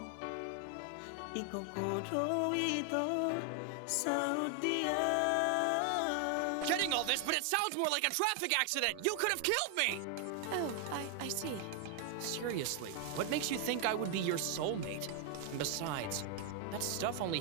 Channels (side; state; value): both; different; correlation 0.00